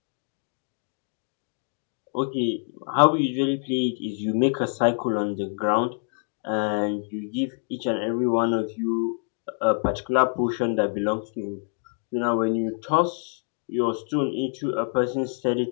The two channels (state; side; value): silent; right; 61 dB below the other